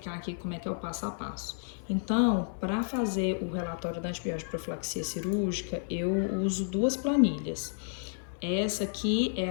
aqui como é que é o passo a passo. Então, para fazer o relatório da antibiótico profilaxia cirúrgica, eu uso duas planilhas. Essa aqui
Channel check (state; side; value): silent; right; 57 dB below the other